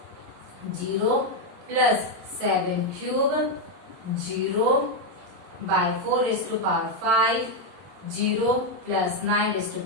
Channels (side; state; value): left; late; 22 ms